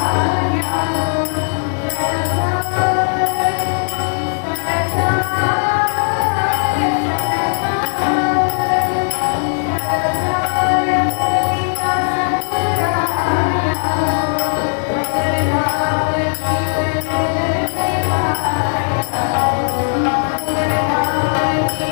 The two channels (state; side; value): silent; right; 62 dB below the other